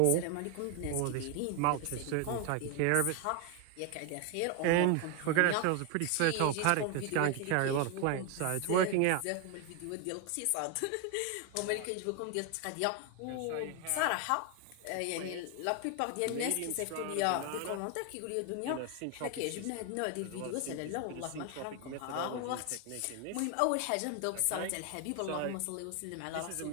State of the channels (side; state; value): both; different; correlation 0.01